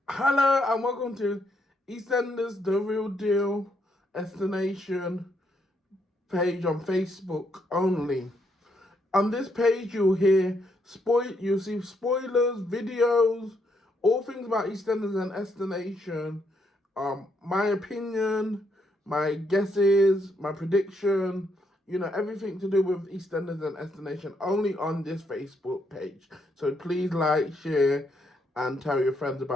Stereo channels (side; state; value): both; normal; correlation 0.76